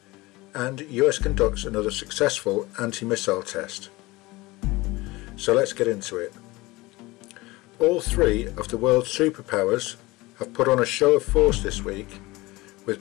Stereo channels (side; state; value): right; quieter; 21.3 dB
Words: and US conducts another successful anti-missile test. So let's get into it. All three of the world's superpowers have put on a show of force this week,